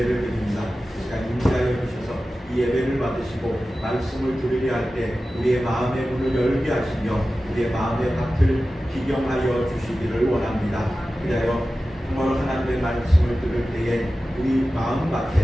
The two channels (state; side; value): normal; both; correlation 0.94